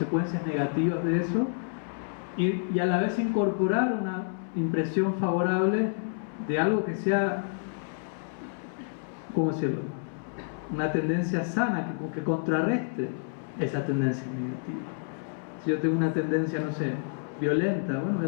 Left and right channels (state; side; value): silent; right; 59 dB below the other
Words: negativas de eso, y a la vez incorporar una impresión favorable de algo que sea, ¿cómo decirlo?, una tendencia sana que contrarreste esa tendencia negativa. Si yo tengo una tendencia, no sé, violenta, bueno, voy a